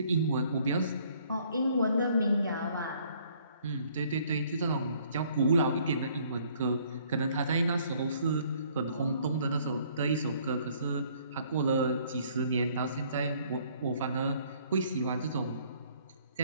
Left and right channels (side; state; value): both; inverted; correlation -0.61